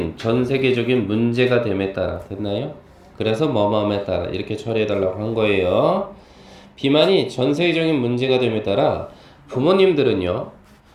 문제가 됨에 따라 됐나요? 그래서 뭐뭐함에 따라 이렇게 처리해달라고 한 거예요. 비만이 전 세계적인 문제가 됨에 따라 부모님들은요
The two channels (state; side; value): identical; both; correlation 1.00